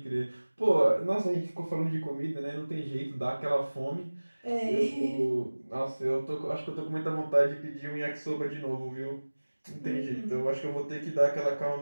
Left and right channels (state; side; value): inverted; both; correlation -1.00